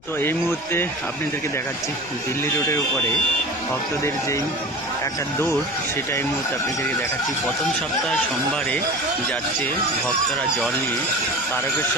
তো এই মুহূর্তে আপনাদেরকে দেখাচ্ছি দিল্লি রোডের উপরে ভক্তদের যেই একটা দৌড়, সেটা এই মুহূর্তে আপনাদেরকে দেখাচ্ছি। প্রথম সপ্তাহ সোমবারে যাচ্ছে ভক্তরা জল নিয়ে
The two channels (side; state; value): left; noise; rumble, 25 dB below the sound